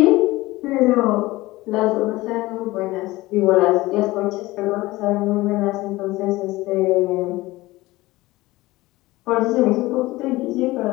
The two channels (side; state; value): right; quieter; 19.2 dB